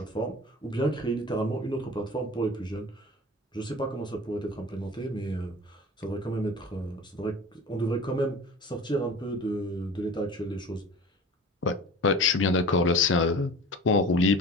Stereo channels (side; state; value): both; normal; correlation 0.38